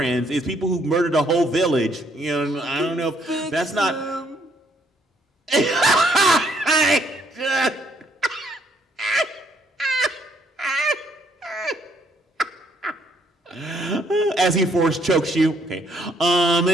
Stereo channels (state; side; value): normal; both; correlation 0.68